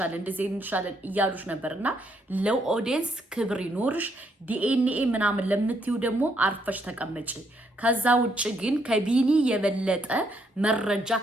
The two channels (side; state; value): both; normal; correlation 0.73